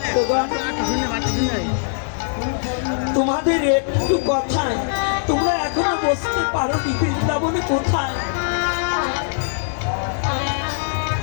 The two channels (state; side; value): silent; right; digital silence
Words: তোমাদের একটু কথায় তোমরা এখনো বুঝতে পারো নি বৃন্দাবনে কোথায়।